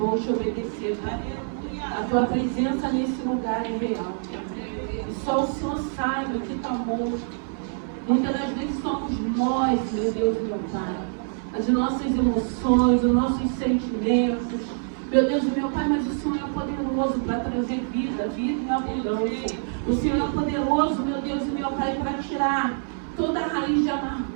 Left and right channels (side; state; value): left; silent; 61 dB below the other